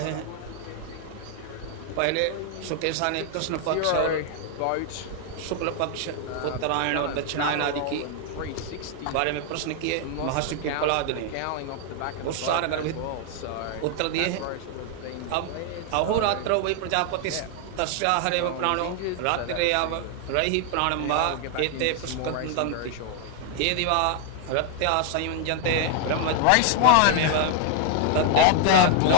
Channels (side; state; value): both; different; correlation 0.00